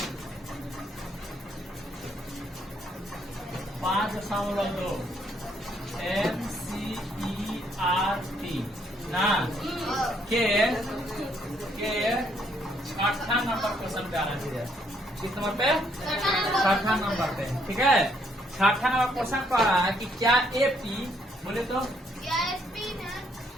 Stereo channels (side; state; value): both; normal; correlation 0.70